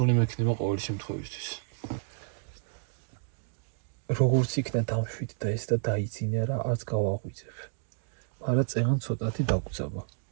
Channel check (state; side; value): silent; left; digital silence